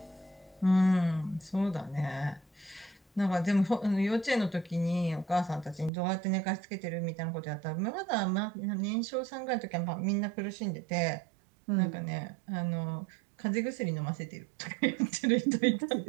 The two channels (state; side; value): drops out; left; at 5.9 s